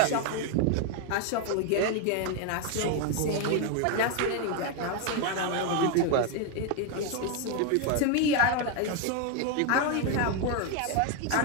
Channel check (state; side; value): different; both; correlation 0.01